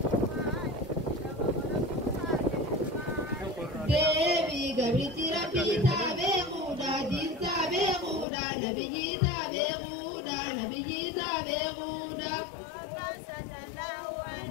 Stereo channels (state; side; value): drops out; right; at 8.2 s